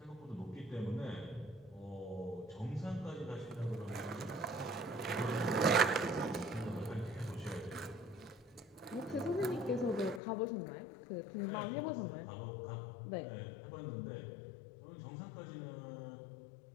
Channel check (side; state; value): right; drops out; at 10.2 s